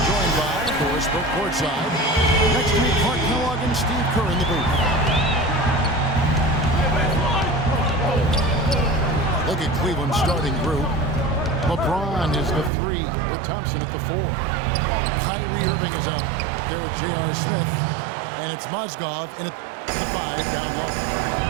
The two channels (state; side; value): drops out; left; at 12.7 s